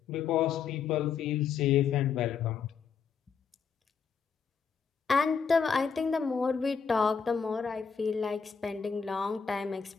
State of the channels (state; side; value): quieter; right; 6.2 dB